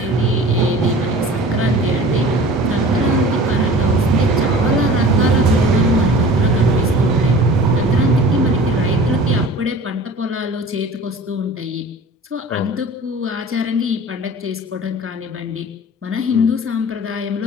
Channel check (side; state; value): both; normal; correlation 0.41